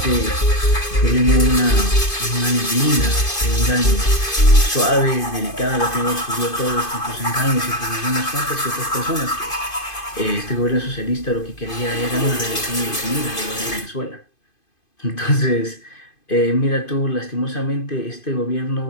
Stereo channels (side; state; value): right; late; 2.5 ms